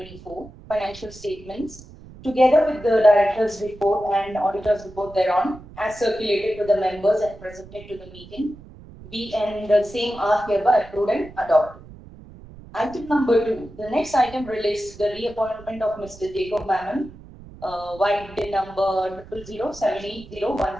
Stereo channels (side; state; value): right; noise; rumble, 19 dB below the sound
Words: financial statements, together with the director's report and auditor's report thereon, as circulated to the members and presented to the meeting, be and the same are hereby approved and adopted. Item number 2. The next item relates to the reappointment of Mr. Jacob Mammon, white bin number